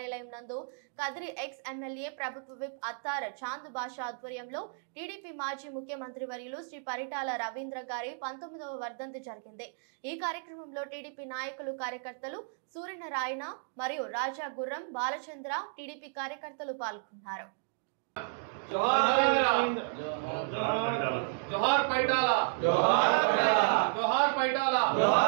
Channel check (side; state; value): left; silent; digital silence